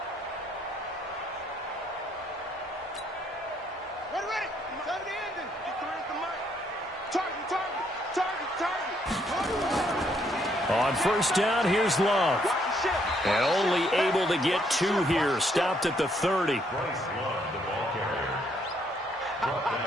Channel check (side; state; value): both; normal; correlation 0.70